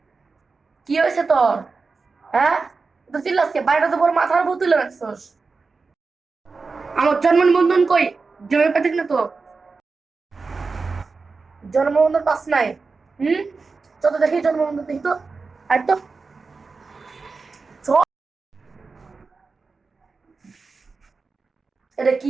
কি হয়েছে তোর? হ্যাঁ, তো চিল্লাসকে বাইরে তো বড় মাথার উপর তুলে রাখছস। আমার জন্ম নিবন্ধন কই? জমি পাঠিক না তো, জন্ম নিবন্ধন পাস নাই? হুম, চল তো দেখি জন্ম নিবন্ধন, দেখি তো। আর তো চল। এটা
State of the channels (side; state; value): left; quieter; 4.3 dB